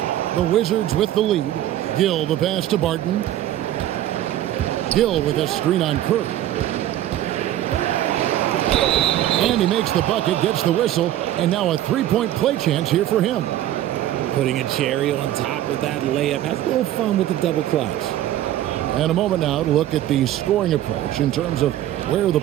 The Wizards with the lead. Gill the pass to Barton. Gill with a screen on Curry. And he makes the bucket, gets the whistle, and now a 3-point play chance here for him. Putting a cherry on top of that layup. Has a little fun with the double clutch. And a moment now to look at the scoring approach in terms of where the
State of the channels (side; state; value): left; quieter; 13.0 dB